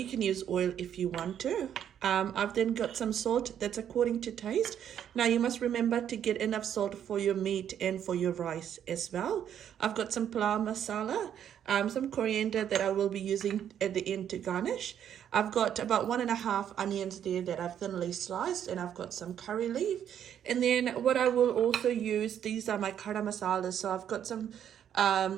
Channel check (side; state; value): left; quieter; 9.5 dB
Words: can use oil if you want to. I've then got some salt that's according to taste. Now you must remember to get enough salt for your meat and for your rice as well. I've got some palau masala, some coriander that I will be using at the end to garnish. I've got about 1.5 onions there that I've thinly sliced, and I've got some curry leaf. And then what I will also use, these are my kara masalas. So I've got some